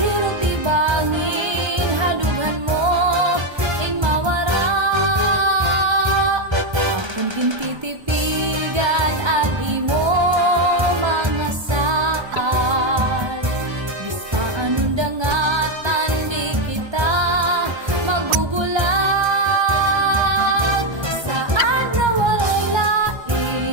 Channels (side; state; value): left; late; 1.3 ms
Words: ibangin, hadughan mo ing mawara. Akong gintitipigan ang imo mga saad. Bistaan undangatan di kita magbubulag. Saad na waray